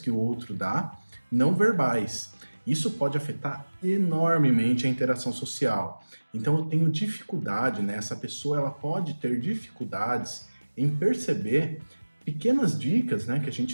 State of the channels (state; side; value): inverted; both; correlation -1.00